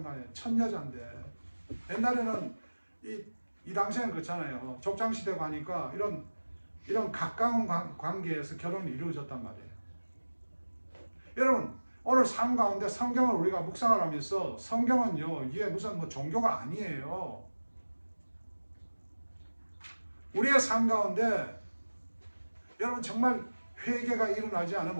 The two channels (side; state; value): both; inverted; correlation -1.00